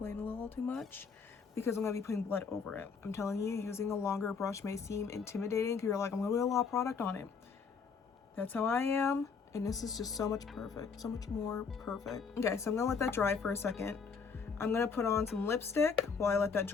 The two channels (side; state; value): right; quieter; 5.6 dB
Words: a little too much because I'm gonna be putting blood over it. I'm telling you, using a longer brush may seem intimidating because you're like, I'm gonna put a lot of product on it. That's how I am. And this is just so much more perfect. Okay, so I'm gonna let that dry for a second. I'm gonna put on some lipstick while I let that